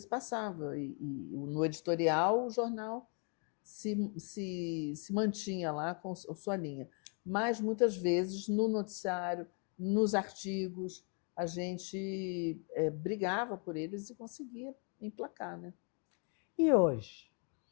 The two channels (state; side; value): quieter; right; 38.8 dB